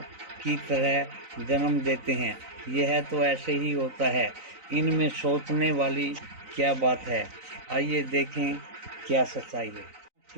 की तरह जन्म देते हैं। यह तो ऐसे ही होता है। इनमें सोचने वाली क्या बात है। आइए देखें क्या सच्चाई है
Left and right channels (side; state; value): left; late; 3.9 ms